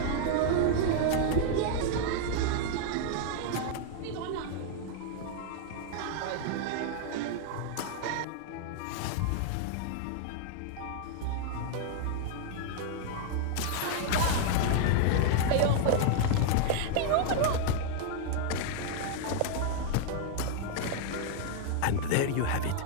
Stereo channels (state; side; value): different; both; correlation -0.01